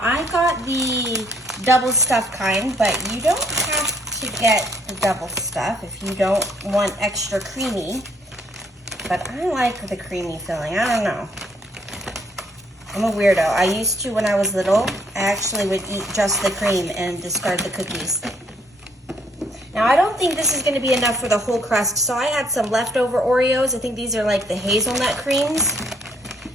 I got the double stuff kind, but you don't have to get the double stuff if you don't want extra creamy. But I like the creamy filling. I don't know. I'm a weirdo. I used to when I was little. I actually would eat just the cream and discard the cookies. Now I don't think this is going to be enough for the whole crust, so I had some leftover Oreos. I think these are like the hazelnut creams.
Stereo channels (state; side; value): normal; both; correlation 0.68